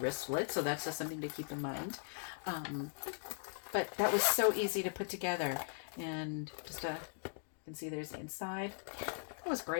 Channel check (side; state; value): right; silent; digital silence